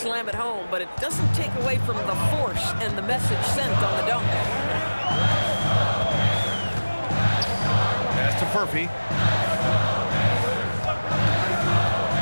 it home, but it doesn't take away from the force and the message sent on the dunk. Pass to Furphy.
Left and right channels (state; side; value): inverted; both; correlation -1.00